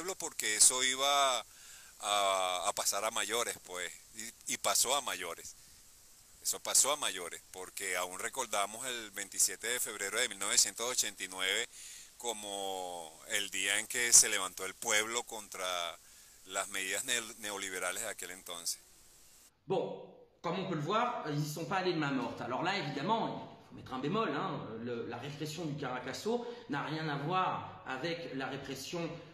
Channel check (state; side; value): identical; both; correlation 1.00